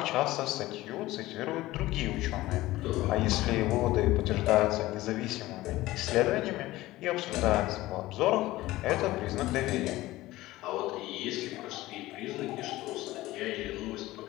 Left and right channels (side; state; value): right; quieter; 17.5 dB